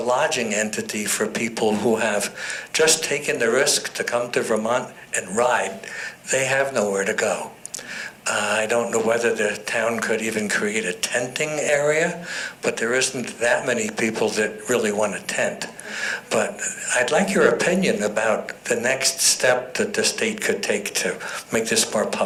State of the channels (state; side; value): identical; both; correlation 1.00